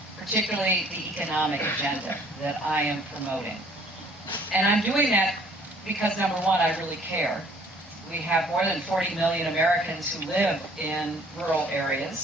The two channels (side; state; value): both; normal; correlation 0.57